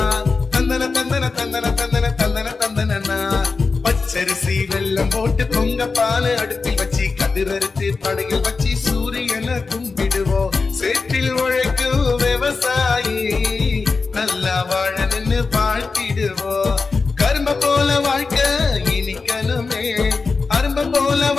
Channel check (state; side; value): quieter; right; 4.3 dB